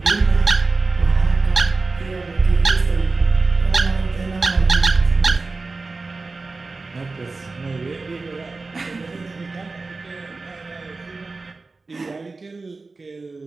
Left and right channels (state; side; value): quieter; left; 3.7 dB